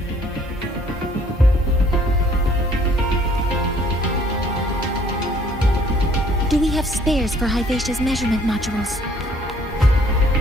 Do we have spares for Hivacia's measurement modules?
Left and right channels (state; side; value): normal; both; correlation 0.60